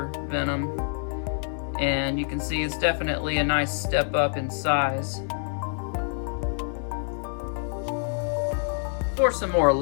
Venom. And you can see it's definitely a nice step up in size. For some more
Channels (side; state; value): right; silent; digital silence